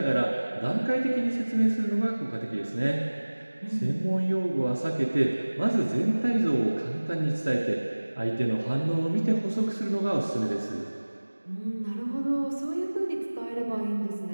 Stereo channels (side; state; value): both; inverted; correlation -1.00